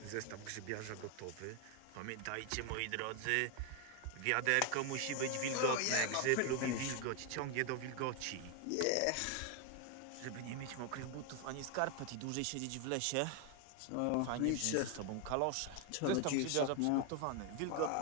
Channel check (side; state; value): both; different; correlation 0.01